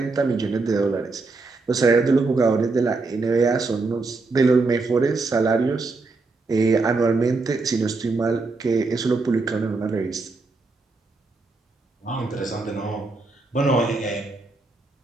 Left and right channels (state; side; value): quieter; left; 3.7 dB